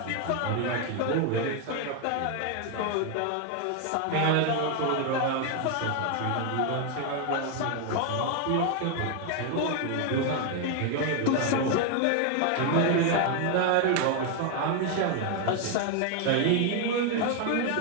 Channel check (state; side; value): different; both; correlation 0.01